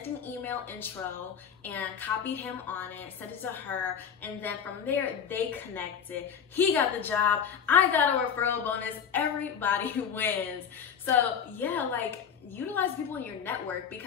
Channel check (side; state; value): right; quieter; 7.5 dB